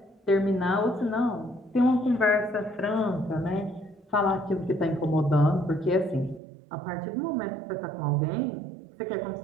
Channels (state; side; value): drops out; left; at 6.4 s